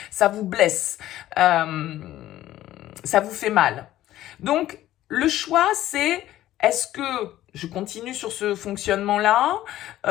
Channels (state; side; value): quieter; right; 14.0 dB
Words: ça vous blesse, ça vous fait mal. Donc, le choix, c'est est-ce que je continue sur ce fonctionnement-là?